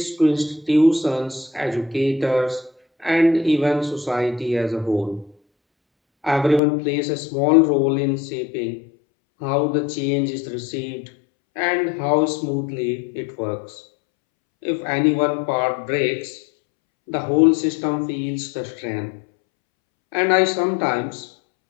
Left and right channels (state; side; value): drops out; right; at 6.6 s